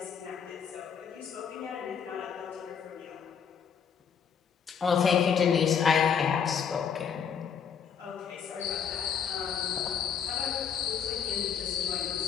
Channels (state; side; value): quieter; right; 7.3 dB